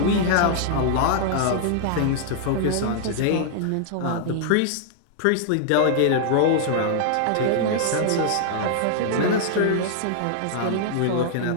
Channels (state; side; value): different; both; correlation -0.01